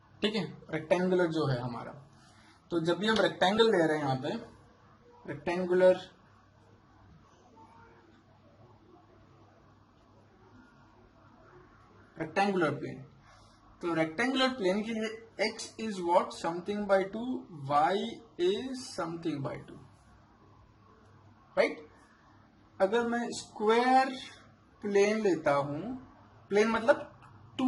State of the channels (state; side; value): identical; both; correlation 1.00